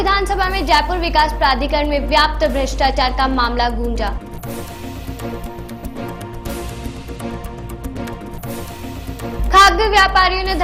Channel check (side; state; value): both; identical; correlation 1.00